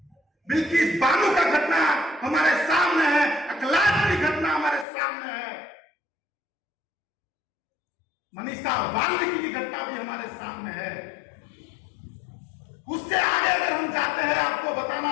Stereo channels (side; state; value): right; drops out; at 4.9 s